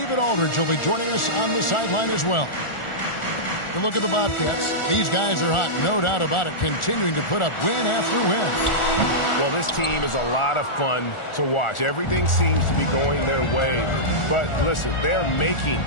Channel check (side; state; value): right; late; 1.4 ms